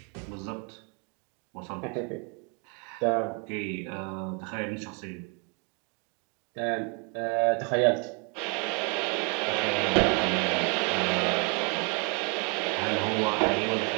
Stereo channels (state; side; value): quieter; left; 32.5 dB